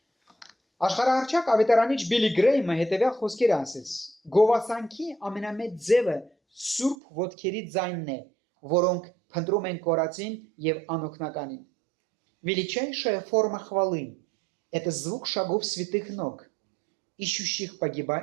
Աշխարհահռչակ ավետարանիչ Բիլի Գրեյմը հետևյալ խոսքեր ասեց. Գովասանքի ամենամեծ ձևը սուրբ ոտքերի ձայնն է, որոնք փնտրում են կորածին եւ անօգնականին։ Величайшая форма хвалы – это звук шагов святых ног, ищущих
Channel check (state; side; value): drops out; left; at 7.0 s